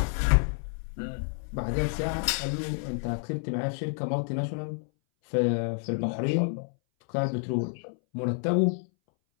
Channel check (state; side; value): silent; right; 59 dB below the other